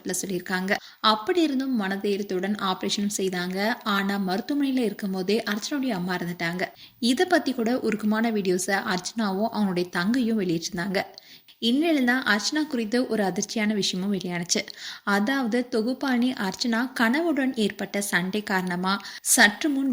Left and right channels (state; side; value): identical; both; correlation 1.00